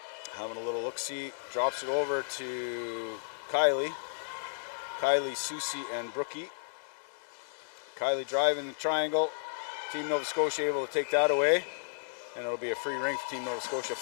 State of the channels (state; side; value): silent; right; digital silence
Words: Having a little look-see. Drops it over to Kylie. Kylie, Susie, and Brookie. Kylie driving the triangle. Team Nova Scotia able to take that away. And it'll be a free ring for Team Nova Scotia.